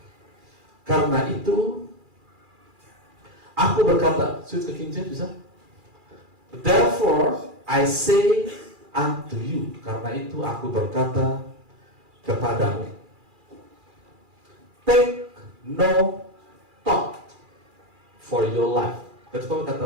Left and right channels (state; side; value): late; left; 2.4 ms